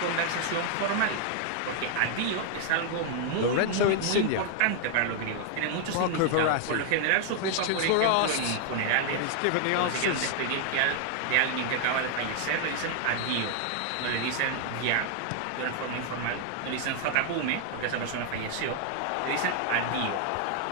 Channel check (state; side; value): different; both; correlation 0.00